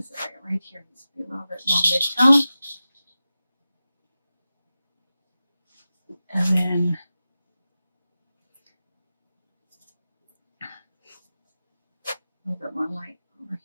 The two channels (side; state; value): both; inverted; correlation -0.94